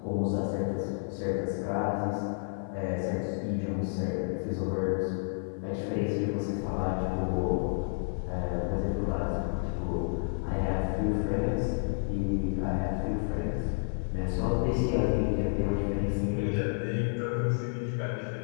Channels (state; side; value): silent; right; 57 dB below the other